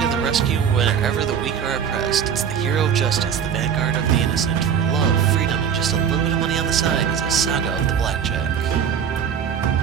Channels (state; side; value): quieter; left; 7.8 dB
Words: to the rescue whenever the weak are oppressed. It's the hero of justice, the vanguard of the innocent. For love, freedom, and just a little bit of money on the side is a saga of the Blackjack.